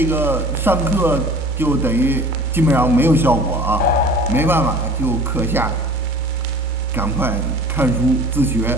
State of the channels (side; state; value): both; normal; correlation 0.44